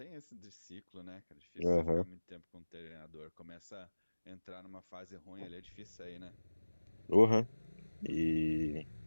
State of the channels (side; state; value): both; inverted; correlation -1.00